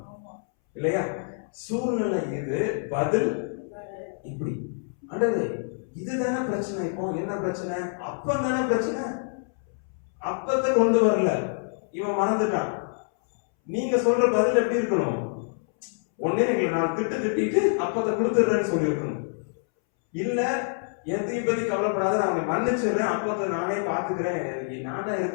இல்லையா? சூழ்நிலை இது, பதில் இப்படி. ஆண்டவரே இதுதானே பிரச்சனை. இப்போ என்ன பிரச்சனை? அப்பம் தானே பிரச்சனை. அப்பத்தை கொண்டு வரல, இவன் மறந்துட்டான். நீங்க சொல்ற பதில் எப்படி இருக்கணும்? ஒன்னே எங்களை நான் திட்டிட்டு அப்பத்தை கொடுத்துடுறேன்னு சொல்லி இருக்கணும். இல்ல எதையும் பத்தி கவலைப்படாத, நான் அவனை மன்னிச்சிடுறேன், அப்பத்தை நானே பாத்துக்கிறேன், நான் தான்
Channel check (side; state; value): right; silent; 61 dB below the other